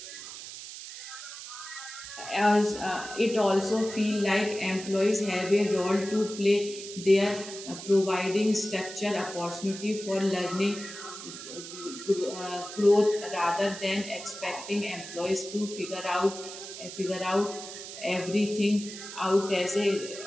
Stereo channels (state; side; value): noise; right; hiss, 11 dB below the sound